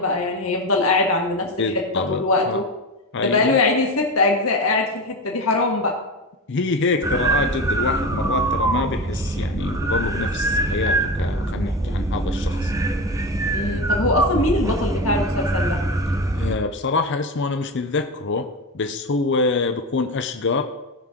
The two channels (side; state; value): both; normal; correlation 0.21